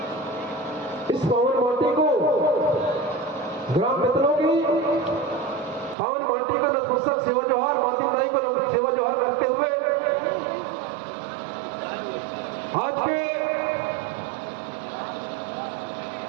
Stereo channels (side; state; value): left; drops out; at 6.0 s